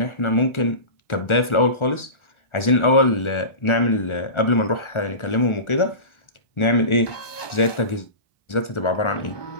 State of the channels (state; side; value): late; right; 1.4 ms